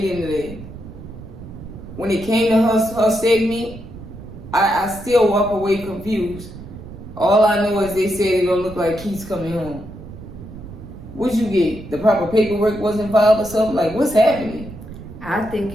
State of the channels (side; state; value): right; noise; rumble, 14 dB below the sound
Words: into that. When it came to her segment, I still walk away confused. All I know is they said it don't look like Keith's coming home. What'd you get? The proper paperwork wasn't filed or something? Like, what's happening? I think